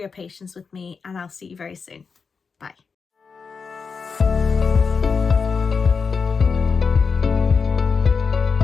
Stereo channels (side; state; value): right; quieter; 5.3 dB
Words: patience with me, and I'll see you very soon. Bye.